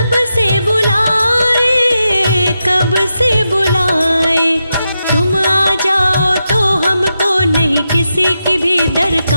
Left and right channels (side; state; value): both; inverted; correlation -0.87